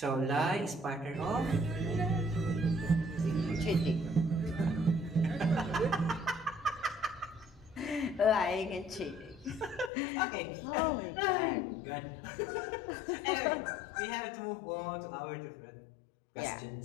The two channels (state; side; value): drops out; right; at 9.9 s